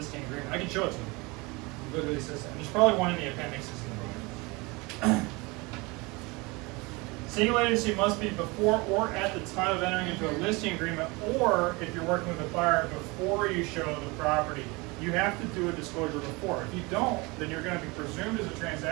agreement. I can show it to you. It literally says that. There's probably one in the appendixes in the book. Single agency must be before or at the time of entering into a listing agreement, or if you're working with a buyer before you show the property. You have to do a disclosure before. If you don't, then you're going to be presumed as a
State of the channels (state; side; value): quieter; left; 25.5 dB